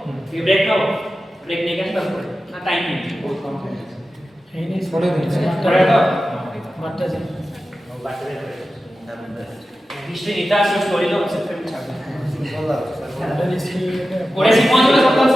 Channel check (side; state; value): both; normal; correlation 0.93